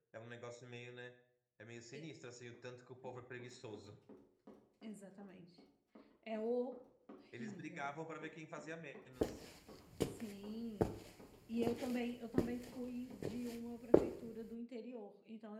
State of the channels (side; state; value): both; identical; correlation 1.00